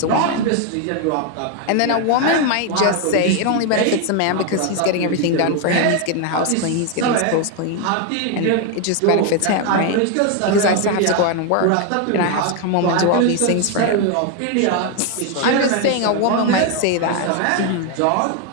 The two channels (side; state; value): both; different; correlation 0.01